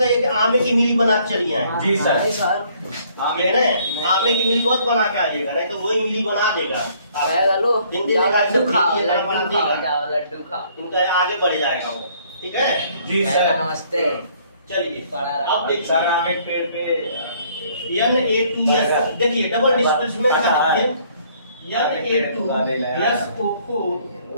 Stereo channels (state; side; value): inverted; both; correlation -0.62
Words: कि आमे की मिली बना के चलिए आए। जी सर। कह रहे हैं आमे की मिली मत बना के आ जाएगा, नहीं तो वही मिली बना देगा। लड्डू खाओ, लड्डू खाओ, इनका आगे बढ़ जाएगा वो, ठीक है। जी सर, नमस्ते। चलिए अब देखिए सर हम एक पेड़ पे Na2S देखिए डबल डिस्प्लेसमेंट का Na2SO4